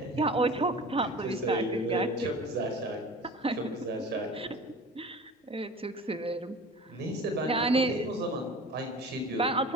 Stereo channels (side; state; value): both; normal; correlation 0.39